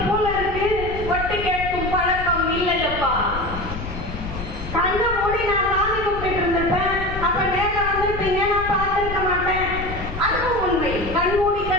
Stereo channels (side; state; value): left; noise; rumble, 8 dB below the sound